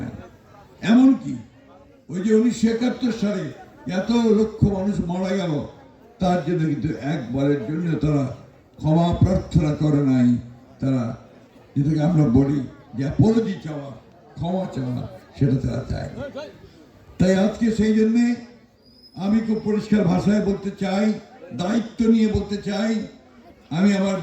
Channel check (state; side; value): identical; both; correlation 1.00